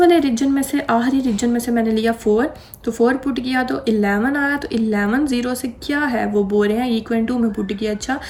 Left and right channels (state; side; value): identical; both; correlation 1.00